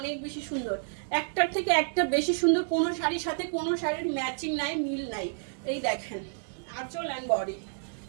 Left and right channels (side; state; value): left; silent; digital silence